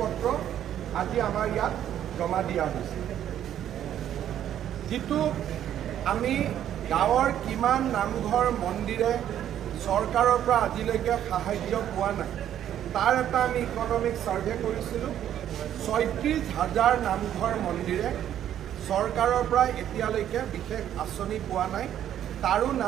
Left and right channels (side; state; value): left; quieter; 10.8 dB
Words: আজি আমাৰ ইয়াত জমা দিয়া হৈছে। যিটো আমি গাঁৱৰ কিমান নামঘৰ মন্দিৰে চৰকাৰৰ পৰা আজিলৈকে সাহায্য পোৱা নাই, তাৰ এটা আমি ইকনমিক সাৰ্ভে কৰিছিলোঁ। 36,000 নামঘৰ মন্দিৰে চৰকাৰৰ পৰা এতিয়ালৈকে বিশেষ আঁচনি পোৱা নাই, তাৰো